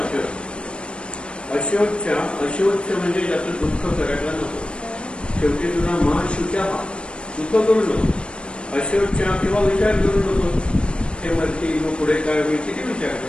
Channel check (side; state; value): right; late; 0.057 ms